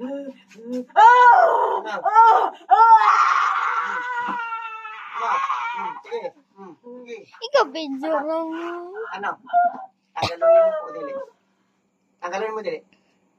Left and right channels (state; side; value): identical; both; correlation 1.00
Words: Sige. Sige. Ikaw, video lang. Ano? Tanggalin mo o dili? Tanggalin mo dili?